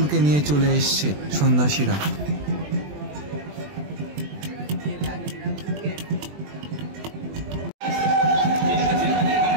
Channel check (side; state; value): left; late; 20 ms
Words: নিয়ে চলে এসছে সন্ন্যাসীরা।